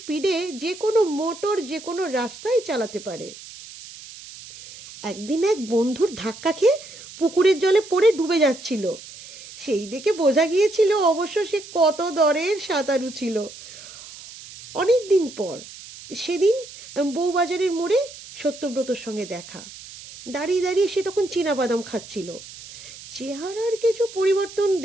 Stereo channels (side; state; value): right; noise; hiss, 16 dB below the sound